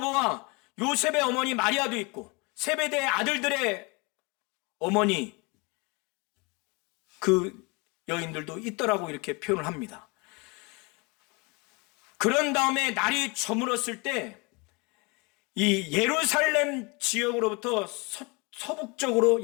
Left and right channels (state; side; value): quieter; right; 28.6 dB